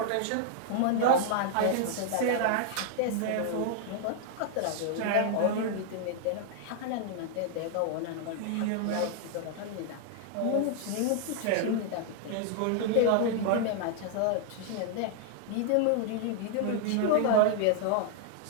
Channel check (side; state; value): both; different; correlation 0.00